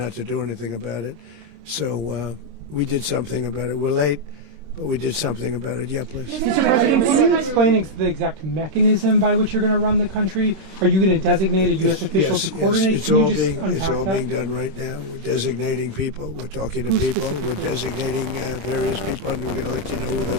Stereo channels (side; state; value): left; late; 26 ms